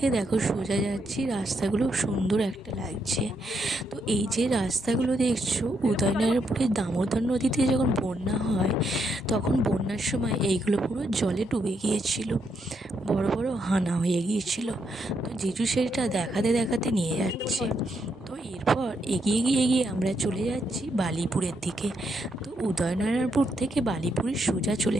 দেখো সোজা যাচ্ছি, রাস্তাগুলো সুন্দর একটা লাগছে। তো এই যে রাস্তাগুলো দেখছো, উদয়নারায়ণপুরের দামোদর নদীতে যখন বন্যা হয় তখন বন্যার সময় এইগুলো পুরো জলে ডুবে গিয়েছিল, বড় বড় হানা হয়ে গিয়েছিল। তো জিজু সেটা দেখাতে দেখাতে নিয়ে যাচ্ছে। তো এরপর এগিয়ে আমরা চলে যাচ্ছি বালিপুরের দিকে। তো উদয়নারায়ণপুর থেকে বালিপুরে সোজা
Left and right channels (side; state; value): both; normal; correlation 0.79